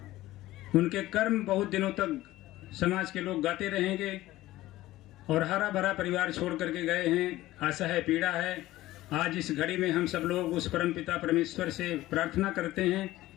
उनके कर्म बहुत दिनों तक समाज के लोग गाते रहेंगे। और हरा भरा परिवार छोड़ करके गए हैं, आशा है, पीड़ा है। आज इस घड़ी में हम सब लोग उस परम पिता परमेश्वर से प्रार्थना करते हैं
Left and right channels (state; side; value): quieter; right; 16.4 dB